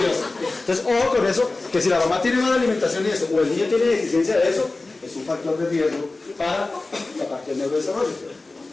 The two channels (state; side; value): quieter; right; 3.3 dB